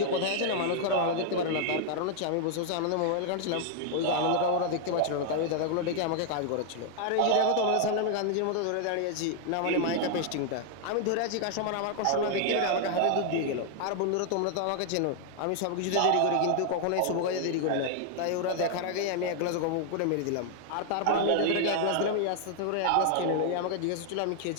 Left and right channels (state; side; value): different; both; correlation 0.00